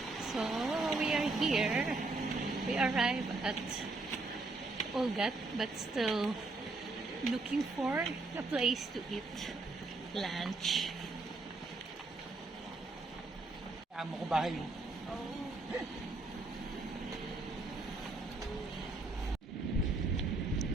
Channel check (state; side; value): quieter; left; 3.3 dB